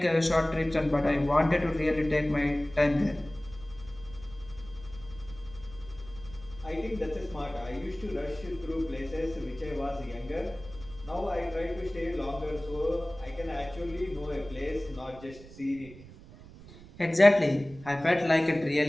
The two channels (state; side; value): noise; right; rumble, 18 dB below the sound